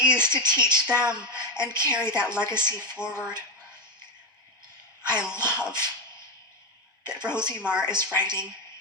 to teach them and carry that legacy forward. I love that Rosie Marr is writing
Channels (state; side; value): normal; both; correlation 0.10